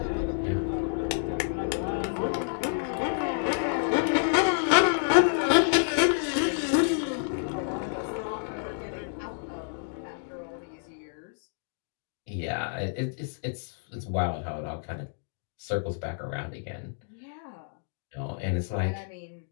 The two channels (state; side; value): silent; right; digital silence